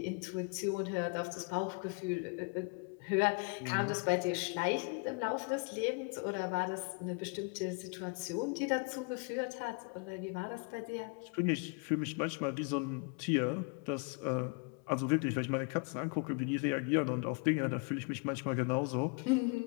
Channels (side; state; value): right; quieter; 33.4 dB